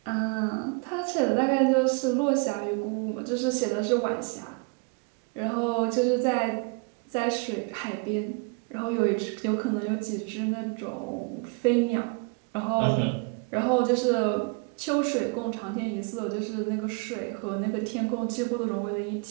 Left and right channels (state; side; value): quieter; left; 33.0 dB